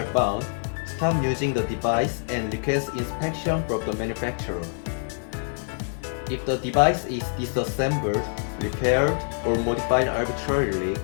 found, stop using the device and request inspection from the manufacturer. If the device is disassembled, repaired, or modified arbitrarily,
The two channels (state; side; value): silent; right; digital silence